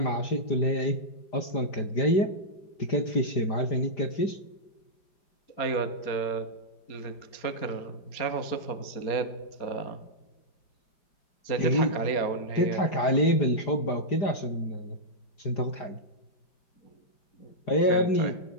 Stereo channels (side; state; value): right; late; 5.0 ms